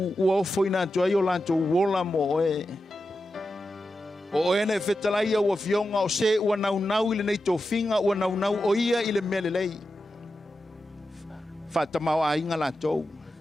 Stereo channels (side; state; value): both; normal; correlation 0.90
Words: ua ofo ina tuai o lantou wola mo oe. O ene whetalaia ua fionga o se ua nau i le nei tofinga ua nau o ia i le mele lei. Whatamau a inga la tou.